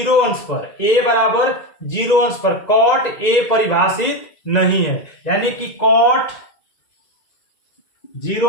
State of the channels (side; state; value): right; late; 2.0 ms